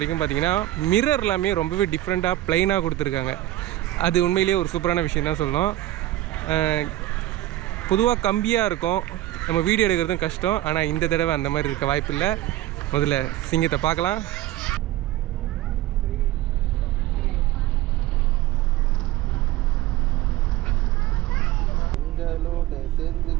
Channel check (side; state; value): left; quieter; 15.0 dB